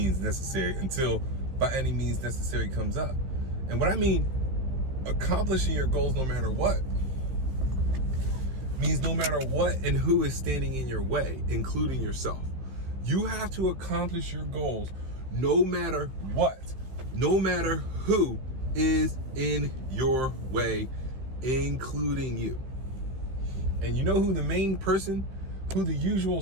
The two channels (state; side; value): late; left; 15 ms